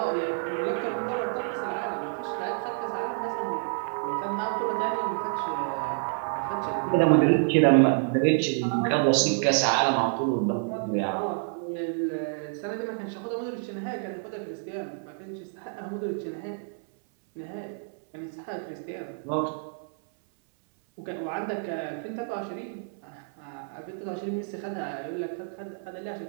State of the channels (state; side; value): silent; left; 59 dB below the other